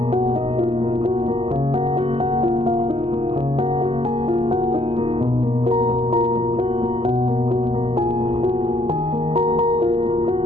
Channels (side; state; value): left; late; 0.29 ms